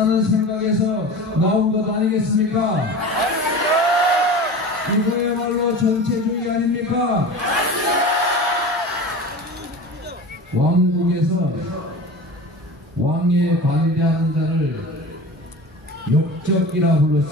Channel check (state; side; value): normal; both; correlation 0.34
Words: 생각에서 나온 것 아니겠습니까? 이거야말로 전체주의 아닙니까? 왕국에서 왕에 반대하는 자를 역적이라